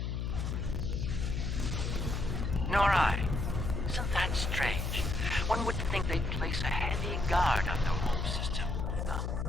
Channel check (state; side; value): noise; left; hum, 1 dB below the sound